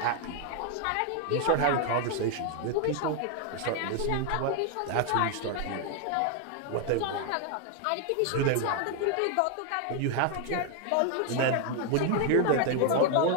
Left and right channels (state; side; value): different; both; correlation 0.01